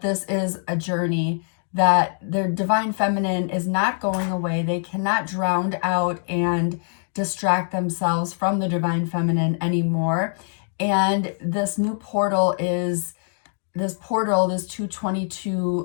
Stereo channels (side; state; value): right; silent; digital silence